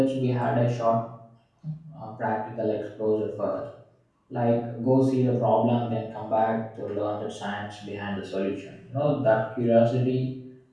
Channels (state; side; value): identical; both; correlation 1.00